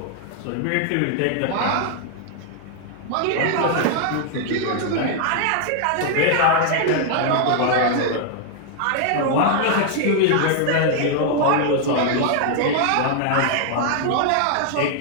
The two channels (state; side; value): different; both; correlation 0.00